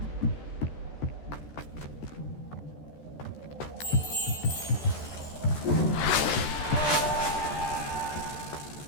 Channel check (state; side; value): late; right; 14 ms